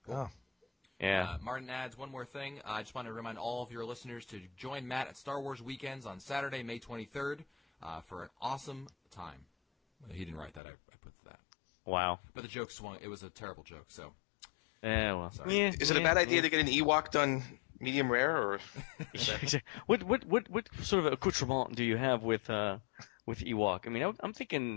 Oh. Yeah. Martin adds one more thing. I just want to remind all of your listeners to join Matt at Star Wars Weekends on Saturday, May 23rd, for an awesome time. He didn't write that. I put that. Wow. But the joke swung. It was a terrible joke, so. Yeah, well. Sorry. Yeah, Is it a bad idea to get an Ewok done medium rare, or? What sort of accoutrement do you have with Ewok? I mean, I'm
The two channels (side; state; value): right; drops out; at 10.6 s